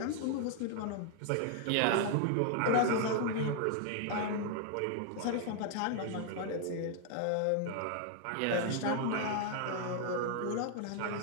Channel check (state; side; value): different; both; correlation 0.00